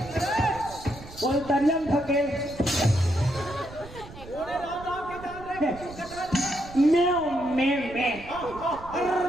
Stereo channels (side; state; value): right; noise; rumble, 16 dB below the sound